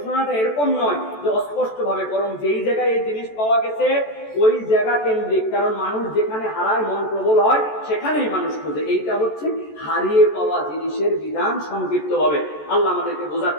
এরকম নয় যে অস্পষ্ট ভাবে, বরং যেই জায়গায় এই জিনিস পাওয়া গেছে ওই জায়গা কেন্দ্রিক, কারণ মানুষ যেখানে হারায় মন প্রবল হয় সেখানেই মানুষ খোঁজে। এইটা হচ্ছে হারিয়ে পাওয়া জিনিসের বিধান সংক্ষিপ্ত ভাবে। আল্লাহ আমাদেরকে বোঝার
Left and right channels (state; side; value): late; right; 14 ms